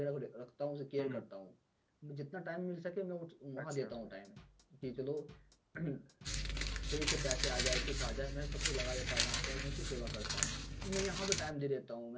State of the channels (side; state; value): both; identical; correlation 1.00